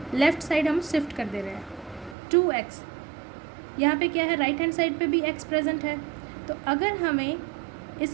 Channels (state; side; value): drops out; left; at 2.1 s